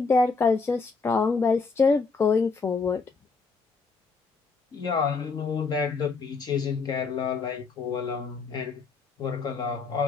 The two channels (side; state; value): right; quieter; 4.6 dB